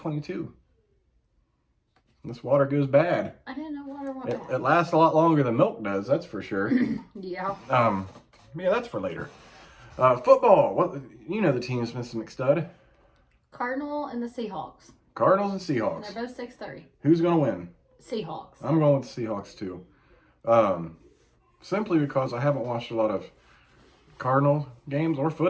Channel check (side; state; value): both; identical; correlation 1.00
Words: This water goes bad. I didn't know water went bad. It lasts a lot longer than milk does, that's for sure. Yeah. Yeah, that's for later. Football. What, you know the teams, Mrs. McStud. Cardinal and the Seahawks. Cardinals and And Seahawks. they're both 6-3. Who's going to win? Seahawks. I'm going with the Seahawks, too. Simply because I haven't watched a lot of Cardinal games or